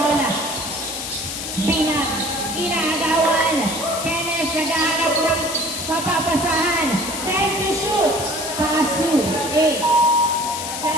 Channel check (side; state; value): left; noise; hiss, 6 dB below the sound